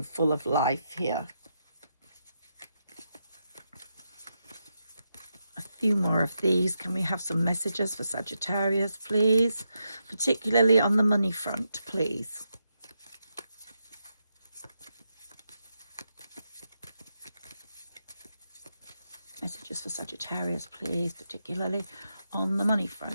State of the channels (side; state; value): both; inverted; correlation -0.84